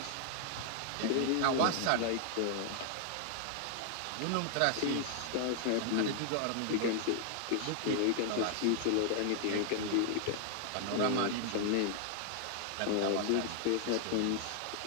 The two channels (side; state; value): both; different; correlation 0.00